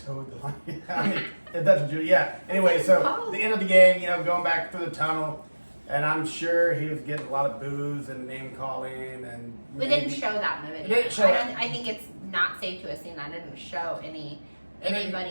the line. I mean, if that's what you, yeah. Anyway, so the end of the game, going back through the tunnel, and I'm sure he was getting a lot of boos and name calling, and We didn't show that in the video. didn't show that. I think it's not safe to assume that didn't show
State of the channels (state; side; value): inverted; both; correlation -1.00